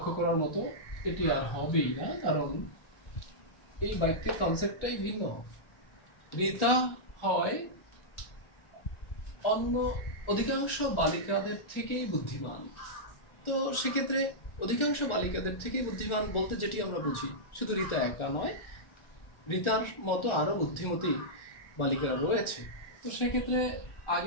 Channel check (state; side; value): late; right; 1.4 ms